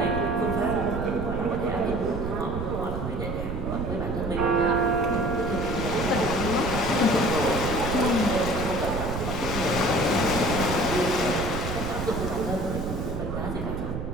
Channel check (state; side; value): noise; right; rumble, 4 dB below the sound